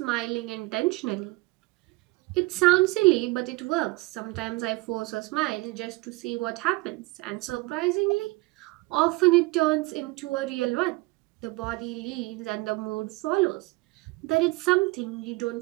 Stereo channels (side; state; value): left; quieter; 23.1 dB